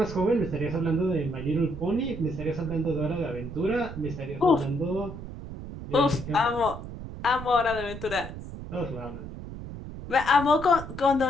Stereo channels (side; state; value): right; noise; rumble, 10 dB below the sound